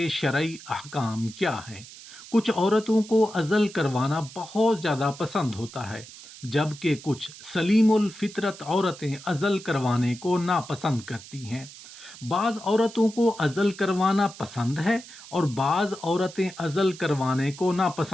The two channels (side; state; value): right; noise; hiss, 17 dB below the sound